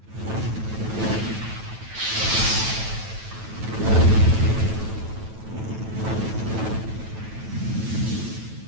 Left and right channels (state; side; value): late; left; 9.1 ms